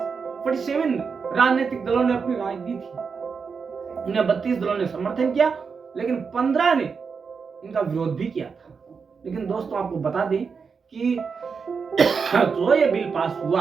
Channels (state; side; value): quieter; left; 5.5 dB